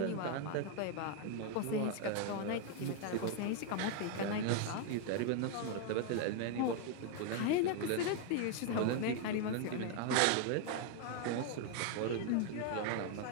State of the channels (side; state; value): both; different; correlation 0.00